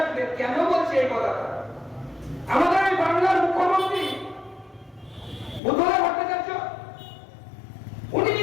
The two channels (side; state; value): right; drops out; at 5.6 s